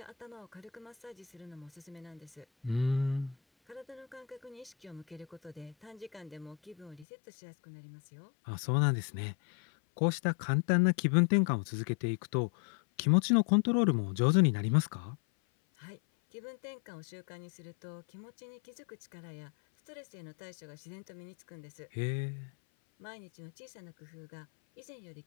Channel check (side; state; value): right; drops out; at 7.1 s